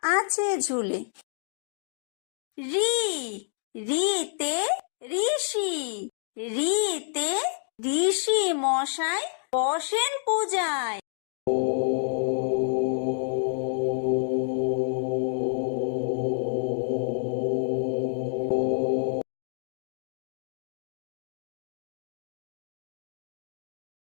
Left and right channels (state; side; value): silent; right; digital silence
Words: আছে ঝুলে। রি, রিতে ঋষি, রিতে ঋষি মশাই বসেন পূজায়।